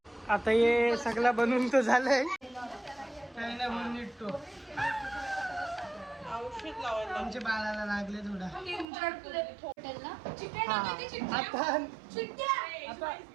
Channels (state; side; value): drops out; left; at 8.8 s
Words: आता हे सगळा बनवून तो झालंय. चायना बनतो आमच्या बाळाला लागले थोडा.